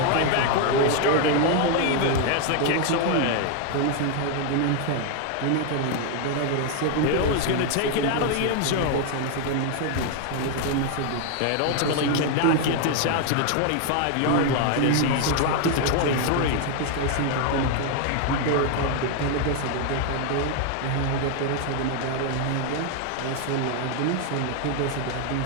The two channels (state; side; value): different; both; correlation 0.01